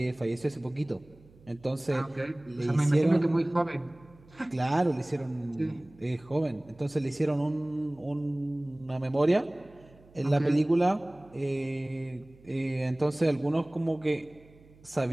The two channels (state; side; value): noise; right; hum, 26 dB below the sound